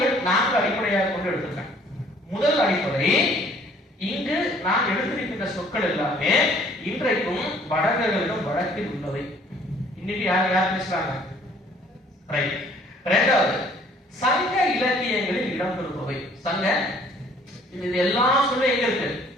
4 அடிப்படையாக கொண்டு எடுத்திருக்கேன். முதல் அடிப்படை, இங்கு நான் எடுத்திருக்கின்ற சொற்கள் எல்லாமே இன்றைக்கும் வடகர்களிடம் வழக்கில் உள்ளவை. இன்னைக்கு யார் பேசுறாங்க? ரைட். இரண்டாவது, சங்க இலக்கியங்களில் இடம்பெறுபவை. சங்க இது எல்லாம் சொல்ல எங்க இருக்கு?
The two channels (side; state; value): both; normal; correlation 0.58